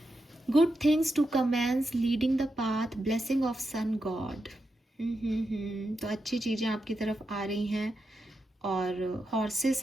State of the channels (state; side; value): normal; both; correlation 0.87